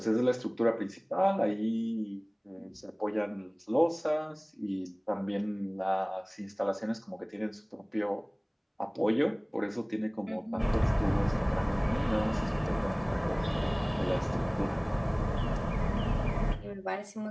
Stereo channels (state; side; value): identical; both; correlation 1.00